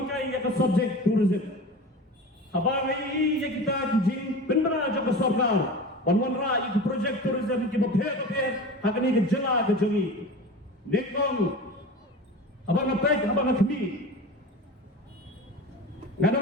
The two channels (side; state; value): both; normal; correlation 0.33